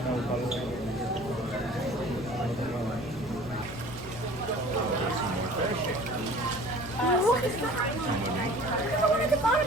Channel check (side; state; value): right; noise; rumble, 20 dB below the sound